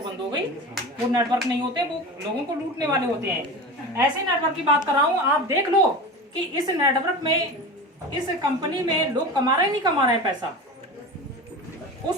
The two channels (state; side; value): normal; both; correlation 0.30